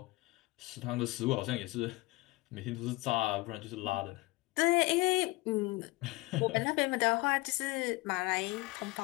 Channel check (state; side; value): quieter; right; 22.2 dB